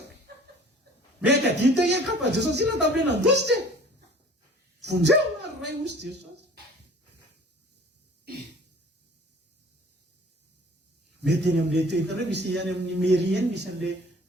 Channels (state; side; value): normal; both; correlation 0.48